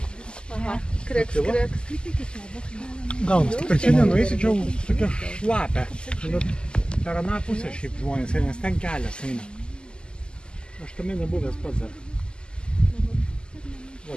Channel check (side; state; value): right; late; 0.048 ms